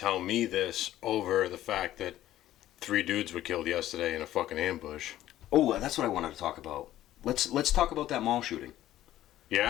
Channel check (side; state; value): right; quieter; 13.6 dB